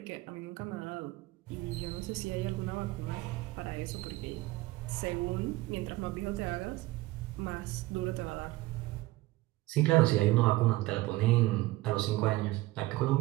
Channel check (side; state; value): left; quieter; 19.1 dB